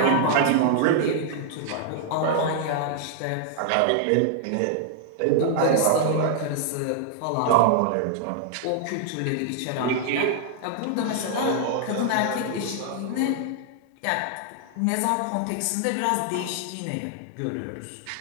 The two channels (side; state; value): both; different; correlation 0.00